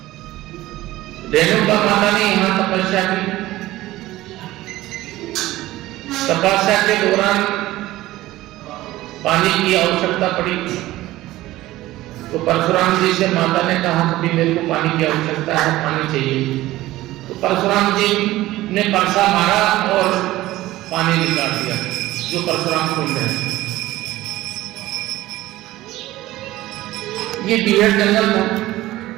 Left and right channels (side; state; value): left; quieter; 16.7 dB